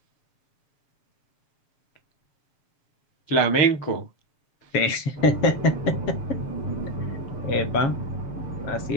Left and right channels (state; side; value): late; right; 7.3 ms